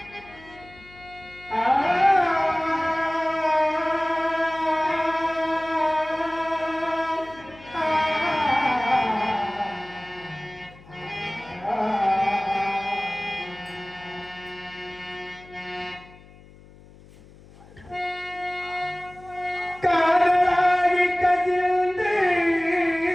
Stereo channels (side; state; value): left; noise; hum, 23 dB below the sound